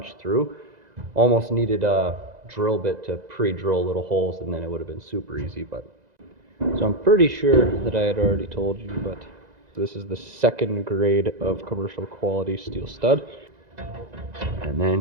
through. Almost needed a drill bit to pre-drill little holes, and then it would have been super easy. But so I'm pretty sure that I had already told you, but this is the second grade of commercial quality steel stud. And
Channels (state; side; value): late; left; 2.0 ms